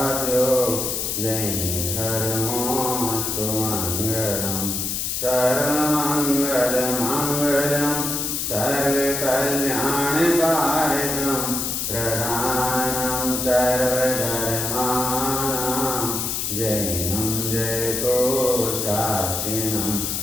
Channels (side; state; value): left; noise; hiss, 1 dB below the sound